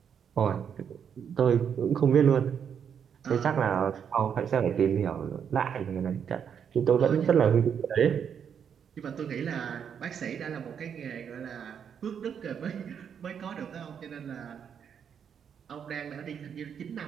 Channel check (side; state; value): left; quieter; 7.7 dB